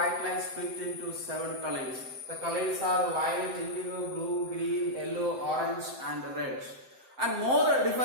light split into 7 colors. The colors are violet, indigo, blue, green, yellow, orange and red. And more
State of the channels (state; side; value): late; left; 7.7 ms